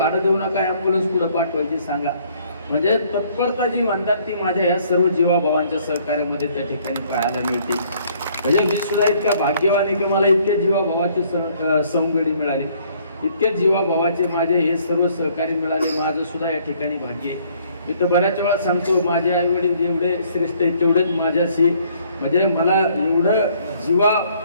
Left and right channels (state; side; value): inverted; both; correlation -0.62